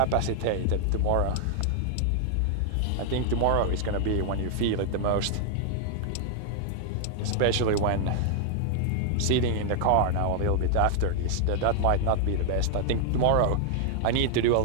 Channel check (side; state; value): both; different; correlation 0.00